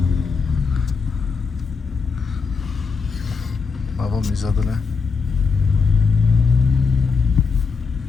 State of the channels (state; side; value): quieter; right; 5.1 dB